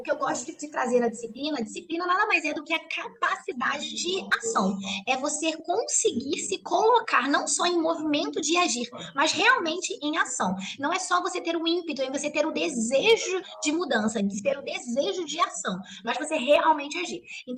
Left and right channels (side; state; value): both; identical; correlation 1.00